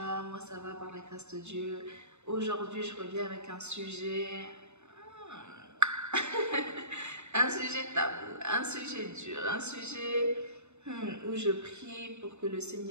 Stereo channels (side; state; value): left; late; 0.82 ms